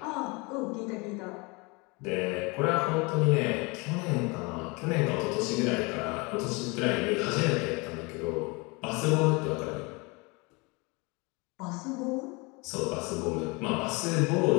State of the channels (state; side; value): quieter; right; 27.7 dB